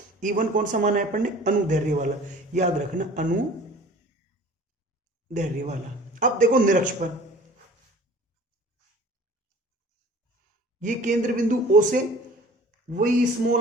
E1 कौन सा माना है अपन ने, अनुदैर्ध्य वाला, याद रखना अनुदैर्ध्य वाला। अब देखो निरक्ष पर, ये केंद्र बिंदु O से वही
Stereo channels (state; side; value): normal; both; correlation 0.46